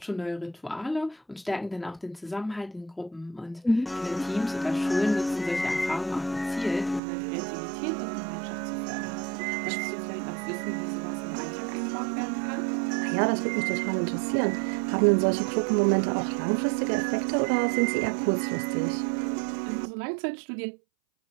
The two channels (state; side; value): drops out; left; at 7.0 s